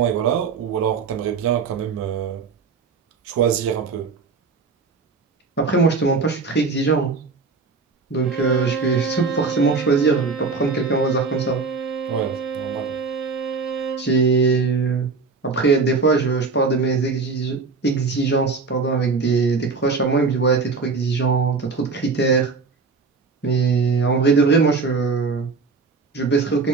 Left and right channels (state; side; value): quieter; left; 4.5 dB